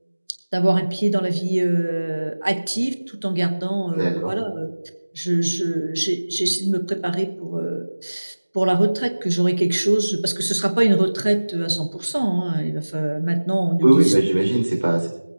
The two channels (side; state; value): both; inverted; correlation -1.00